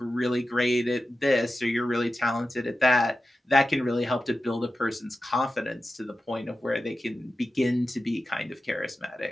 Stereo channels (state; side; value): normal; both; correlation 0.93